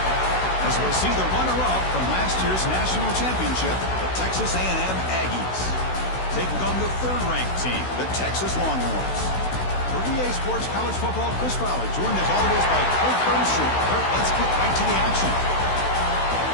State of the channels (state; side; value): late; right; 16 ms